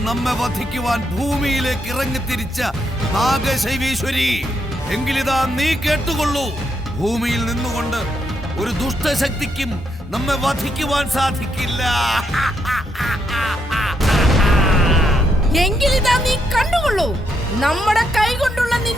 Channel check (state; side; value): normal; both; correlation 0.78